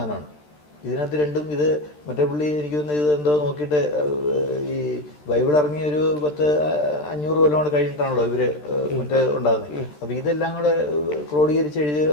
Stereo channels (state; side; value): late; right; 13 ms